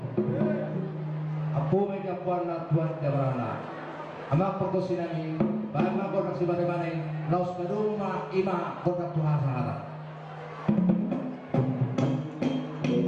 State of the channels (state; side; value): identical; both; correlation 1.00